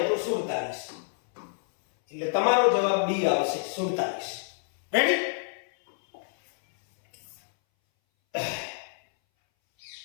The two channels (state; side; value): silent; right; 59 dB below the other